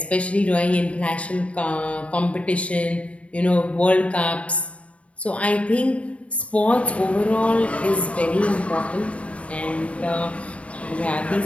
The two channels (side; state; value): right; late; 0.064 ms